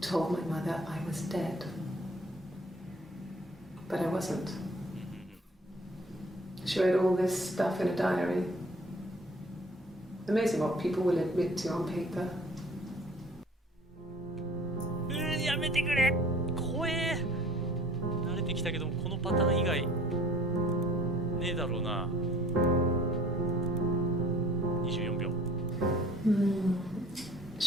told my mother I was dead. But I wasn't. She wrote all this stuff in a diary. Amazing what people will admit to on paper. やめてくれ、怖え。慣れてきたけどこのパターン以外ねえだろうな。24秒。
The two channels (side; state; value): both; normal; correlation 0.52